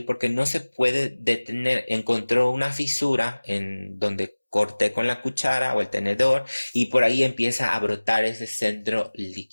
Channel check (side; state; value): both; inverted; correlation -1.00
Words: porque no se puede detener. Encontró una fisura en donde corté con la cuchara o el tenedor y por ahí empieza a brotar ese centro